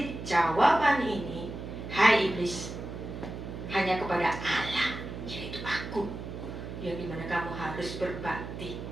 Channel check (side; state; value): right; noise; hum, 9 dB below the sound